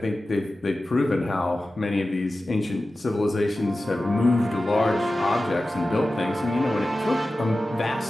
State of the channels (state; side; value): normal; both; correlation 0.95